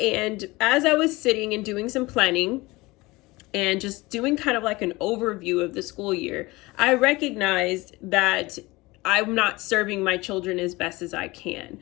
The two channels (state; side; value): quieter; right; 21.7 dB